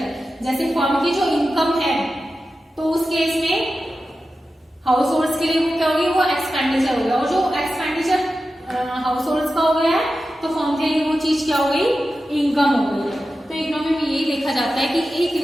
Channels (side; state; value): both; normal; correlation 0.92